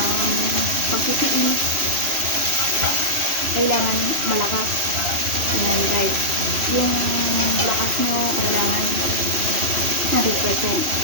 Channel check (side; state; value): left; late; 3.0 ms